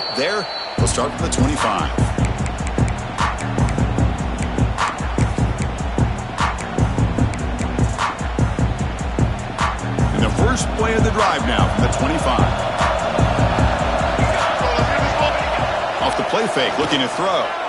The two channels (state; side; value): identical; both; correlation 1.00